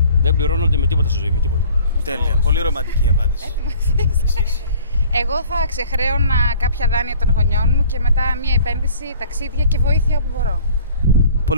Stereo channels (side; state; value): both; inverted; correlation -0.51